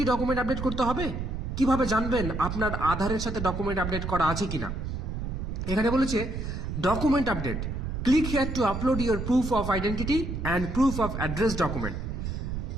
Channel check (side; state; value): right; noise; rumble, 4 dB below the sound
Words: ডকুমেন্ট আপডেট করতে হবে? কিভাবে জানবেন আপনার আধারের সাথে ডকুমেন্ট আপডেট করা আছে কিনা? এখানে বলেছে document update, click here two upload your proof of identity and proof of address document.